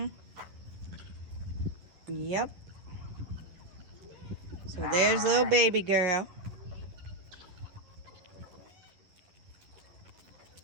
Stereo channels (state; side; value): late; left; 11 ms